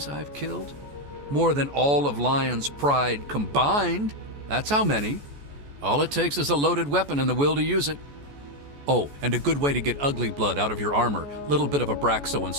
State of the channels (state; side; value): late; left; 14 ms